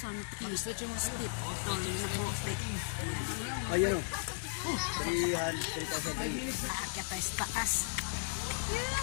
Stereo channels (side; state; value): right; silent; digital silence